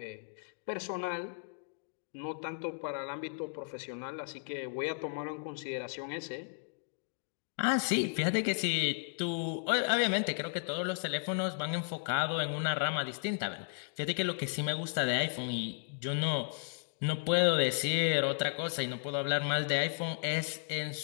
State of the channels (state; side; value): silent; right; digital silence